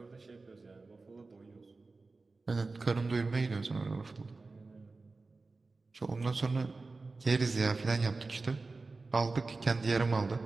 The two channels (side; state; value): left; quieter; 3.7 dB